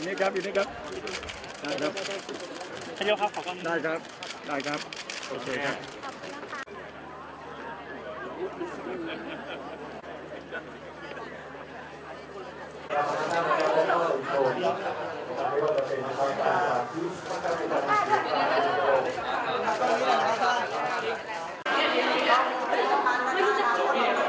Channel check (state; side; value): identical; both; correlation 1.00